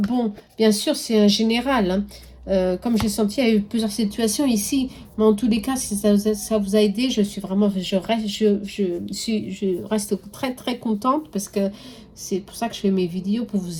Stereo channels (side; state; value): both; identical; correlation 1.00